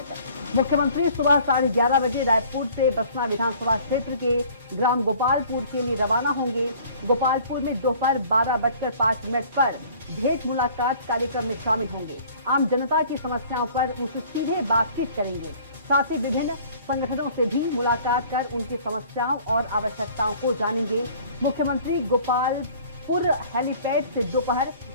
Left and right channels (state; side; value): inverted; both; correlation -0.51